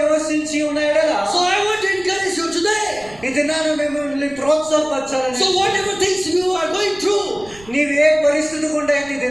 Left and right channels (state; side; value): noise; right; rumble, 22 dB below the sound